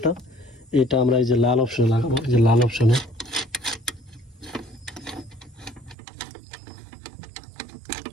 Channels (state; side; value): drops out; left; at 6.0 s